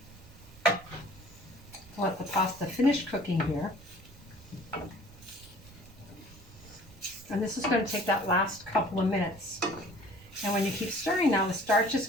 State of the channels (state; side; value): noise; right; rumble, 22 dB below the sound